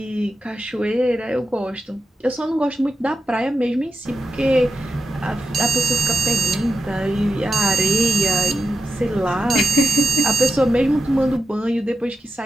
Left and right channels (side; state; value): both; normal; correlation 0.89